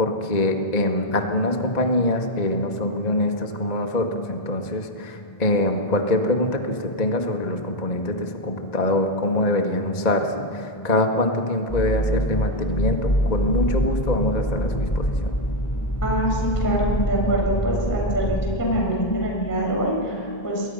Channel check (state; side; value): late; right; 1.9 ms